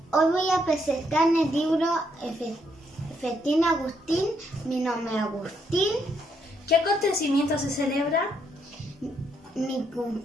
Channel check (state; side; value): normal; both; correlation 0.75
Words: Hoy voy a presentar el libro Festín Agustín, mi nombre es Agustín. ¿Qué acontecimiento se celebra? Mi